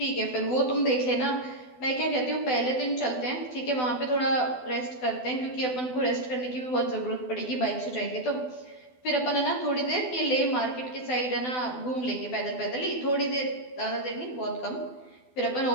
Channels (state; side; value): late; right; 12 ms